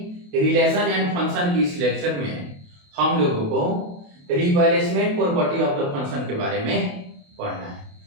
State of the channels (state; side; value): late; left; 28 ms